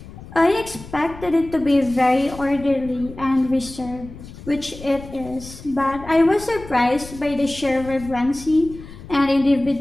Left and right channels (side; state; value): left; noise; rumble, 15 dB below the sound